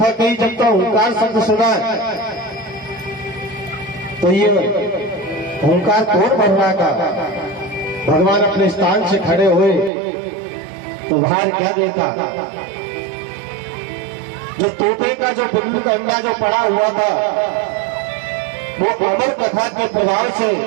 कही, जब तक ओंकार शब्द सुना, तो ये ओंकार कौन बन रहा था? भगवान अपने स्थान से खड़े हुए तो बाहर क्या देखा? जो तोते का जो बिल्लू का अंडा जो पड़ा हुआ था, वो अमर कथा के प्रभाव से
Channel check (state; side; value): drops out; left; at 9.9 s